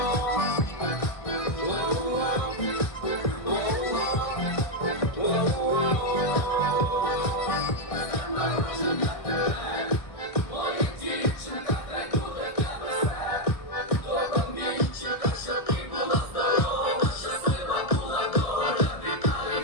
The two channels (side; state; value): right; late; 1.6 ms